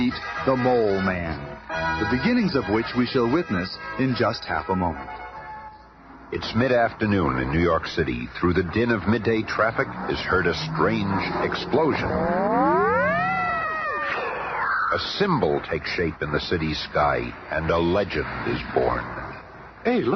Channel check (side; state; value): both; identical; correlation 1.00